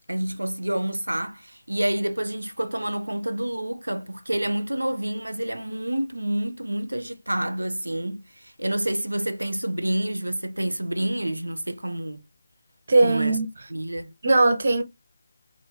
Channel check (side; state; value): both; inverted; correlation -0.97